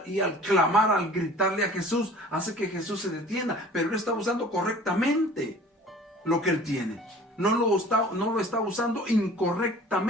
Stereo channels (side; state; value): both; normal; correlation 0.46